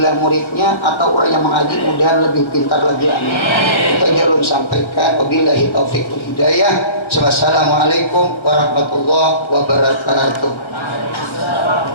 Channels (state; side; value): late; right; 1.4 ms